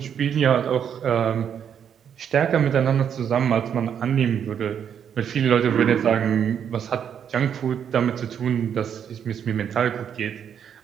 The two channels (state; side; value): quieter; left; 8.3 dB